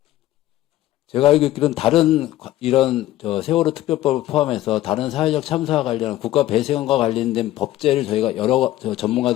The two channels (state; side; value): quieter; right; 14.9 dB